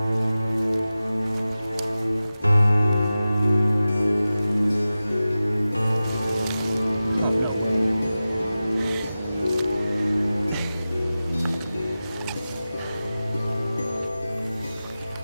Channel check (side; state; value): both; inverted; correlation -0.95